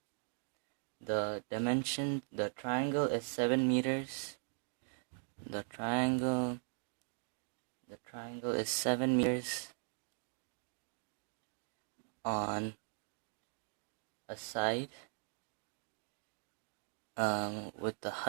is 7 meters. The triangle is 7 meters on a side, with the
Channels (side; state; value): left; silent; digital silence